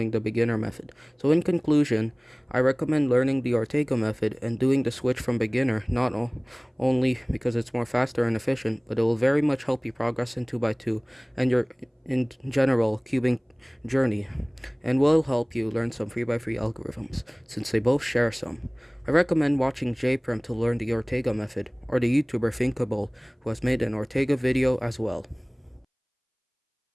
the beginner method. So in conclusion, I recommend learning the Ortega method and doing the switch from beginner, not only because it's more faster and efficient, but it will very much help you progress in 2x2 and your in general cubing journey, and will help you learn some 3x3 algorithms since they both share some. I recommend watching JPerm to learn the Ortega method, or the YouTuber Thinkable, who has made an Ortega video as well.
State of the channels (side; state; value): both; identical; correlation 1.00